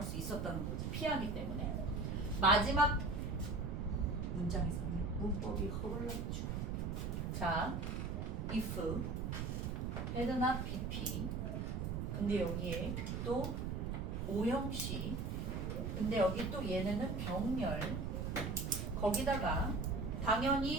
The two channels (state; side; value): noise; right; rumble, 2 dB below the sound